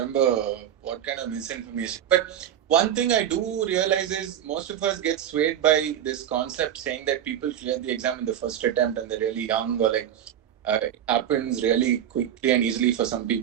what kind of misinformation. But one thing I do realize is most of us get swayed by this concept saying that people clear the exam in the first attempt and they're really young, or like it happens really quickly and easily for some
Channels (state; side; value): quieter; left; 10.1 dB